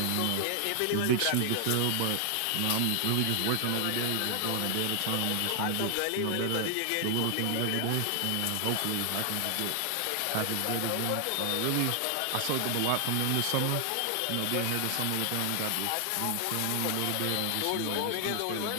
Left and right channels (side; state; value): both; different; correlation 0.00